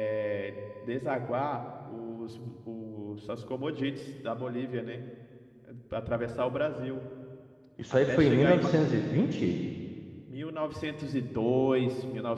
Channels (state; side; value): identical; both; correlation 1.00